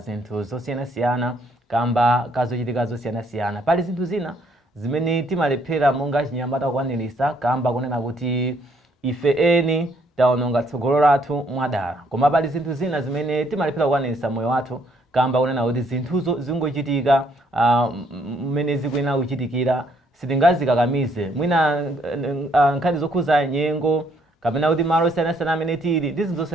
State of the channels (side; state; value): both; normal; correlation 0.68